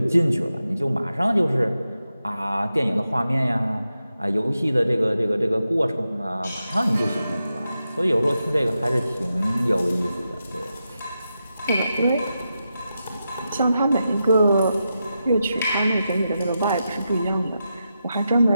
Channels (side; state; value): both; inverted; correlation -0.88